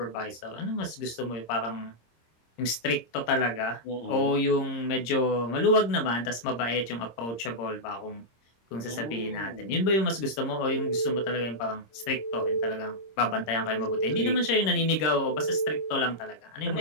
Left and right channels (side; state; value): right; late; 26 ms